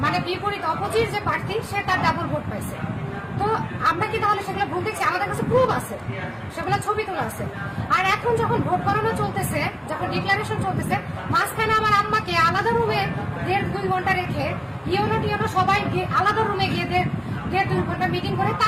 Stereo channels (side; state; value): both; identical; correlation 1.00